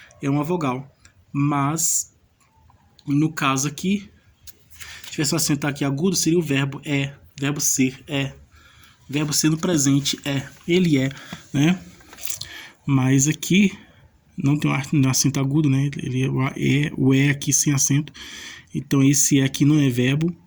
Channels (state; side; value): identical; both; correlation 1.00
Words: uma vogal. Mas, no caso aqui, se tivesse um acento aqui agudo, seria o verbo é. Verbo ser é. Verbo ser no presente é. Ele é, né? Mas aqui não tem um acento agudo, né? Ele o é aqui sem acento. Então esse é aqui não é verbo.